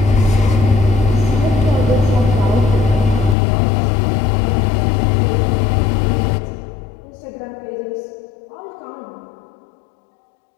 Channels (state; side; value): drops out; right; at 3.4 s